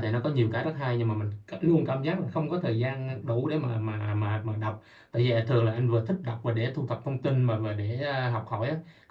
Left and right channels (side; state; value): both; identical; correlation 1.00